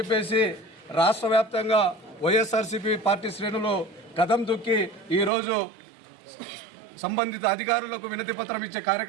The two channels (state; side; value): drops out; left; at 5.3 s